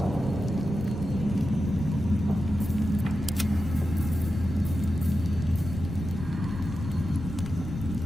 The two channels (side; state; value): both; normal; correlation 0.91